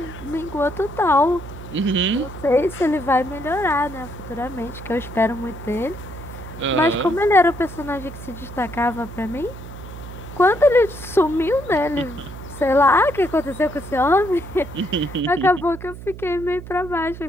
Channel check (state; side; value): noise; right; hum, 13 dB below the sound